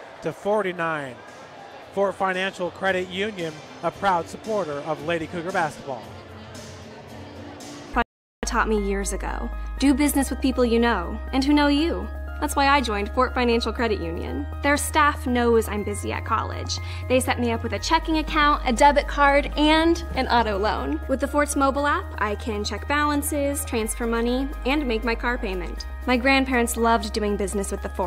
Fort Financial Credit Union, a proud supporter of Lady Cougar basketball. Taught me years ago. Do business with people you know and who know you. That's why I joined Fort Financial Credit Union. Their staff knows I'm busy at college. They set me up with a checking account, a debit card, and an auto loan. With the Fort's mobile app, I can check balances, transfer money, and make my car payment. My grandparents loved doing business with the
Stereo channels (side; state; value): both; identical; correlation 1.00